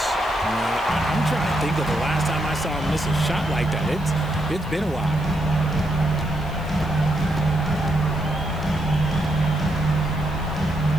I'm trying to think of the last time I saw him miss a shot like that. It's been a while.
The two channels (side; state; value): left; noise; hiss, 24 dB below the sound